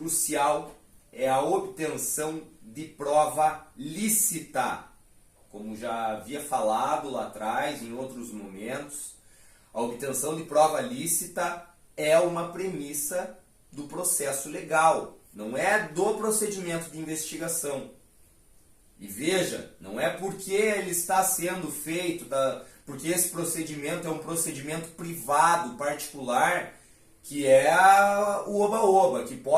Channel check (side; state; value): both; identical; correlation 1.00